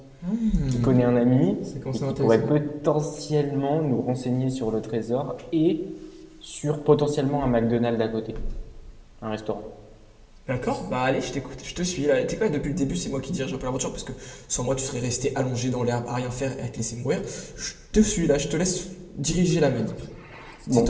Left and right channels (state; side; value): identical; both; correlation 1.00